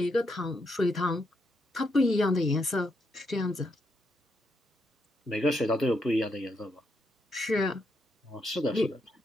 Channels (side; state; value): both; normal; correlation 0.80